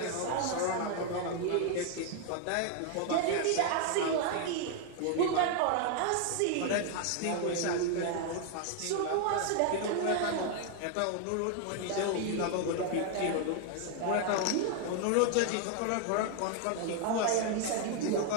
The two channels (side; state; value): both; different; correlation 0.00